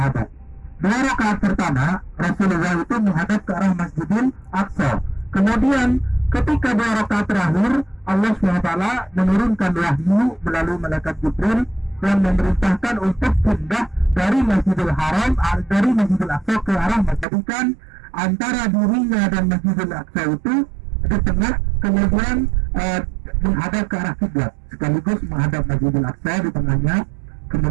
2 rakaat pertama Rasulullah itu menghadap ke arah Masjidil Aqsa. Kemudian ketika 2 rakaat terakhir Allah SWT menurunkan wahyu melalui malaikat Jibril yang memerintahkan untuk pindah dari Masjidil Haram, dari Masjidil Aqsa ke arah Masjidkan antara dirinya dan Masjidil Aqsa itu di tengah, kemudian menghadap ke arah kiblat, sekaligus menghadap Masjidil Aqsa di tengahnya,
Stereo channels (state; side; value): drops out; left; at 17.2 s